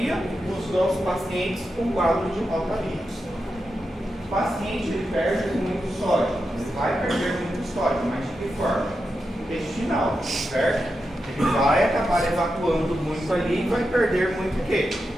nos nossos pacientes com quadro de rotavirus. O paciente ele perde muito sódio, ele vai perder muito sódio, mas de que forma? Intestinal, certo? Ele vai acabar evacuando muito ali e vai perder muito o quê?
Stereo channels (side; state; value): both; normal; correlation 0.88